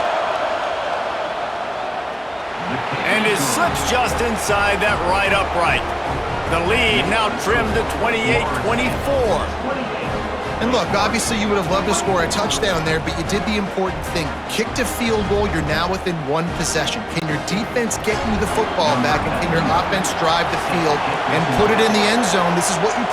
And it slips just inside that right upright. The lead now trimmed to 28-24. And look, obviously you would have loved to score a touchdown there, but you did the important thing. Kicked a field goal, you're now within one possession. Can your defense get you the football back, and can your offense drive the field and put it in the end zone? This is what you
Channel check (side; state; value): both; identical; correlation 1.00